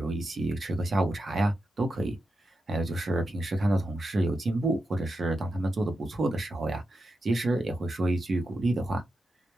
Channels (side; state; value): both; normal; correlation 0.89